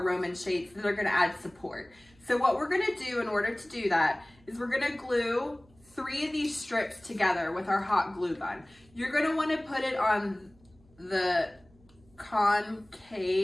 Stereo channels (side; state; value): right; noise; hum, 29 dB below the sound